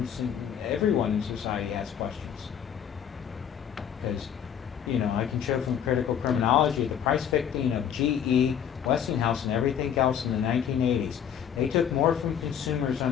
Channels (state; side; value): quieter; right; 8.8 dB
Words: and everyone in society has questions. Because, you know, I can show from critical criminology the price fixing of GE, Westinghouse, and everything else in the 1980s. They took more from consumers